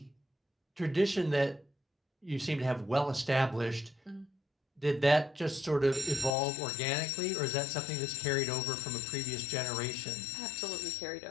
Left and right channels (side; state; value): right; drops out; at 6.3 s